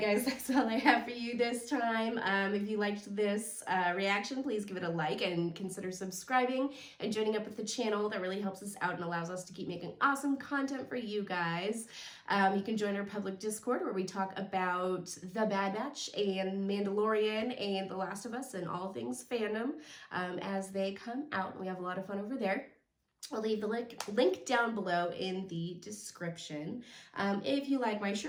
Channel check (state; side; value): identical; both; correlation 1.00